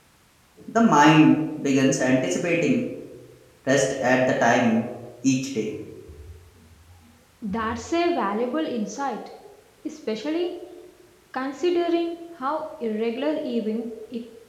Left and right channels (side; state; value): both; identical; correlation 1.00